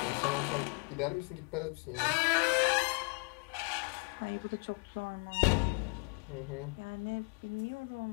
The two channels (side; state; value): right; quieter; 34.0 dB